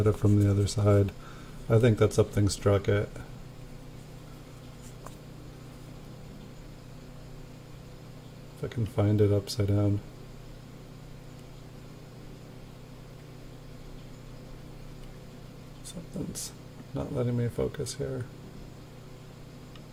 it from the other side. I think that something struck it. If I can find it upside down. Something's not letting me focus here.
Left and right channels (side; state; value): both; identical; correlation 1.00